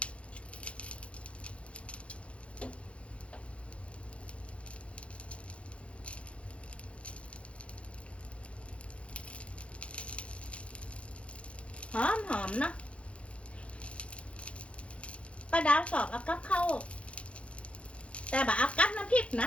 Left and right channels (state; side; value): late; right; 0.061 ms